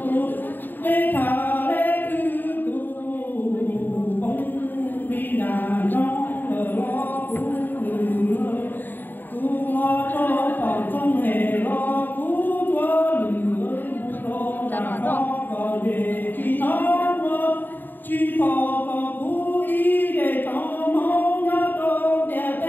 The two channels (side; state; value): right; late; 0.091 ms